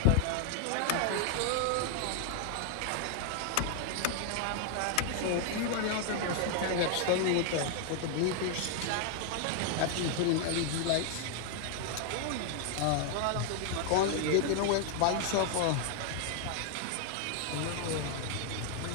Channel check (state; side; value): different; both; correlation 0.00